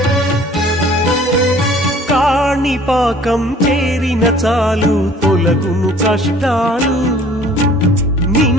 కాణిపాకం చేరిన చాలు తొలగును కష్టాలు,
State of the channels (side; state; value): both; normal; correlation 0.53